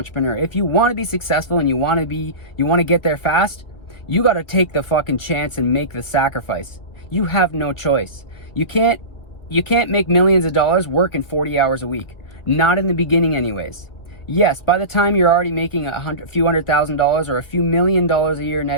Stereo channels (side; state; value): right; late; 1.9 ms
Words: If you want to be successful and you want to get there fast, you got to take the fucking chance and make the sacrifice. You have no choice. You can't make millions of dollars working 40 hours a week. Not in the beginning anyways. Yes, by the time you're already making a few $100,000 or a few $1 million a year